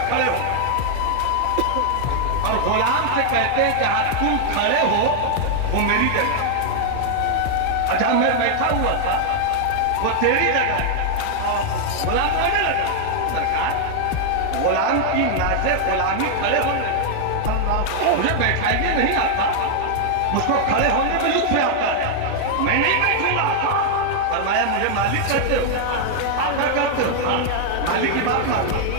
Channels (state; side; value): different; both; correlation 0.00